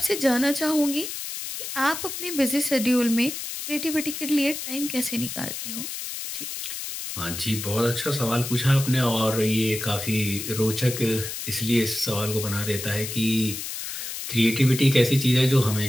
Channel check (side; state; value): left; noise; hiss, 7 dB below the sound